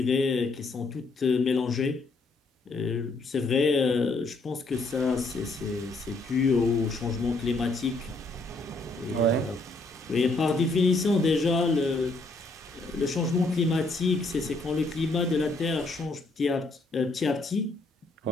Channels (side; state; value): right; quieter; 3.2 dB